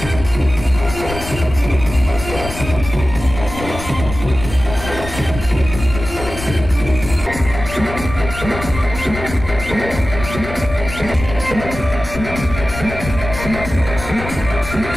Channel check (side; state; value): left; noise; rumble, 9 dB below the sound